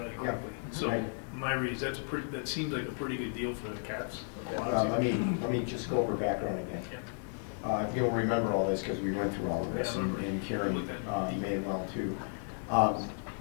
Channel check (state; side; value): silent; right; 55 dB below the other